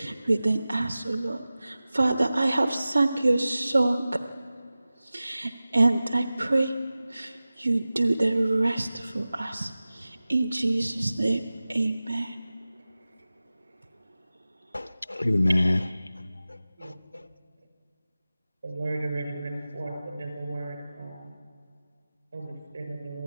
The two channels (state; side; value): inverted; both; correlation -0.96